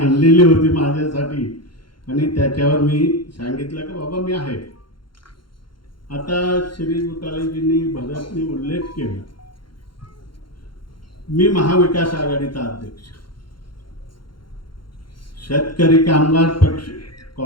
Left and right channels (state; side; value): late; right; 0.73 ms